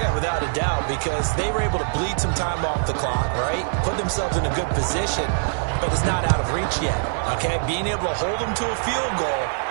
without a doubt, because they were able to bleed some time off the clock, right? Put themselves in a good position, but it's not out of reach yet, okay? Being able to hold them to a field goal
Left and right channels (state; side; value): silent; left; digital silence